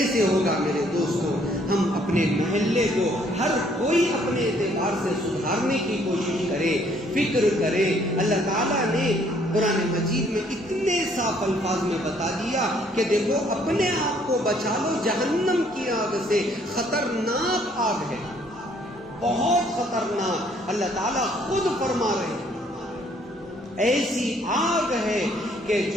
ہوگا میرے دوستوں؟ ہم اپنے محلے کو ہر کوئی اپنے اعتبار سے سدھارنے کی کوشش کرے، فکر کرے۔ اللہ تعالیٰ نے قرآن مجید میں اتنے صاف الفاظ میں بتا دیا کہ دیکھو اپنے آپ کو بچا لو جہنم کی آگ سے، خطرناک آگ ہے، بہت خطرناک۔ اللہ تعالیٰ خود فرما رہے ہیں ایسی آگ ہے کہ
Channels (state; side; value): normal; both; correlation 0.64